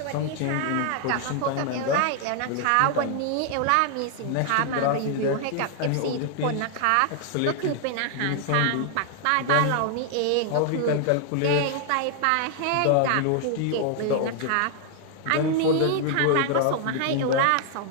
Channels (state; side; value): different; both; correlation 0.00